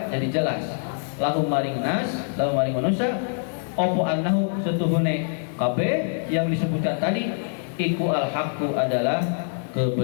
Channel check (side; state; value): right; silent; 62 dB below the other